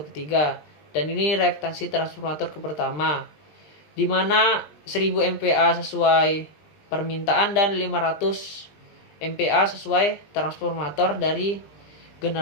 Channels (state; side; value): late; right; 20 ms